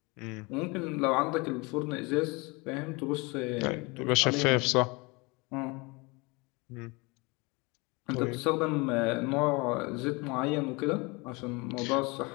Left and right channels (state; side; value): quieter; right; 26.8 dB